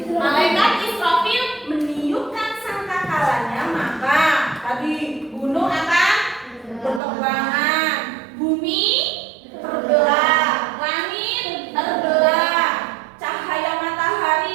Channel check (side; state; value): left; drops out; at 7.0 s